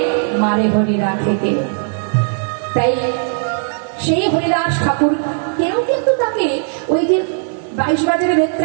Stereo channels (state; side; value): silent; left; digital silence